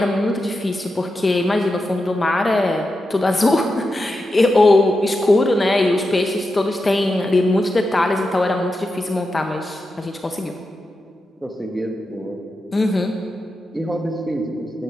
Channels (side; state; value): both; normal; correlation 0.89